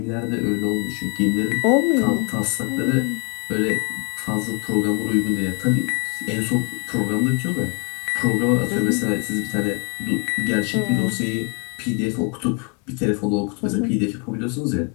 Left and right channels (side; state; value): right; quieter; 35.6 dB